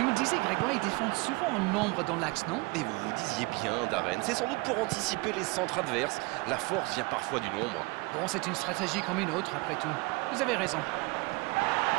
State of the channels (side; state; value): left; quieter; 25.8 dB